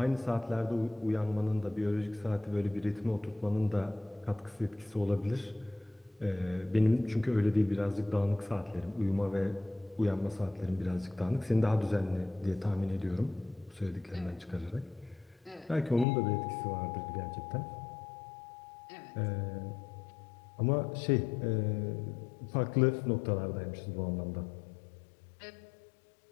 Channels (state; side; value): drops out; right; at 16.1 s